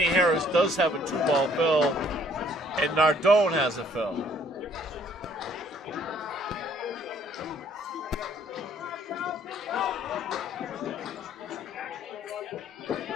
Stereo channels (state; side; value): normal; both; correlation 0.61